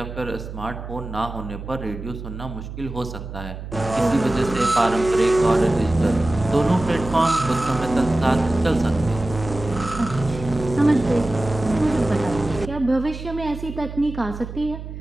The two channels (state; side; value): noise; right; hum, 10 dB below the sound